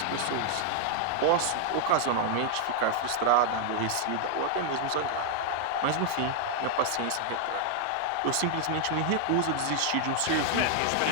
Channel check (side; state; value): both; different; correlation 0.00